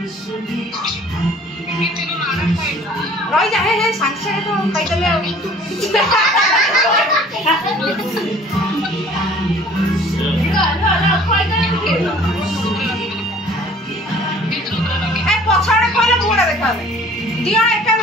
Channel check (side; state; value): both; normal; correlation 0.52